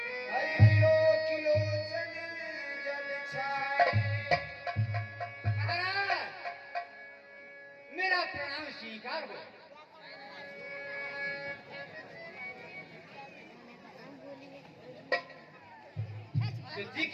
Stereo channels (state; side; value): identical; both; correlation 1.00